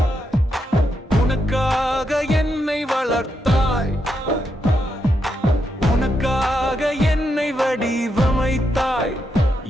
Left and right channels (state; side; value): normal; both; correlation 0.82